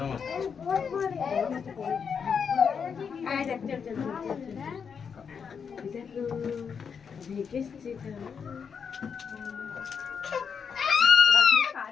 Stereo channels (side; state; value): right; quieter; 6.5 dB